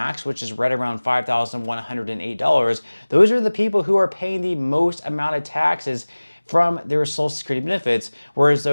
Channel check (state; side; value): inverted; both; correlation -1.00